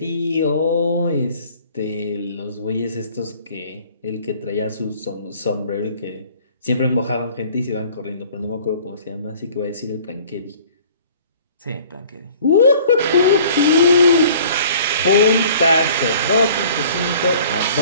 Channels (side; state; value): both; inverted; correlation -0.51